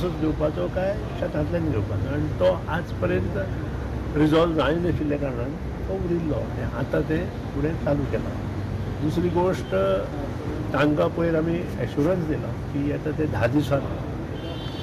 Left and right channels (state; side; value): identical; both; correlation 1.00